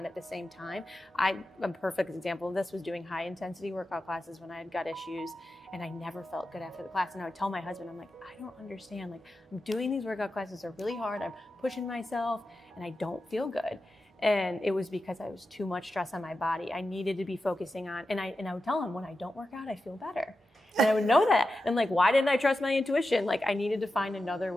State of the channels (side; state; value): both; normal; correlation 0.91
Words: at the same time. A perfect example of this was doing high intensity workout classes when I had gut issues, and I never felt good after the class. And I would tell my husband, I'm like, I don't understand, like, I'm doing these workout classes, are really hard, I'm pushing myself, and I don't feel good. And it was because I was too much stress on my body. I needed to be focusing on, and I would tell him, when I don't work out, I feel better. And I would know that. And like, why didn't I trust my intuition? Like, I needed to find another